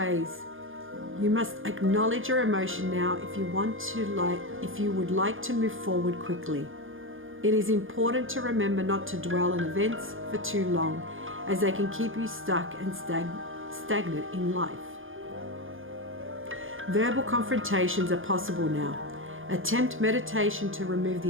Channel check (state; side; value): late; left; 0.59 ms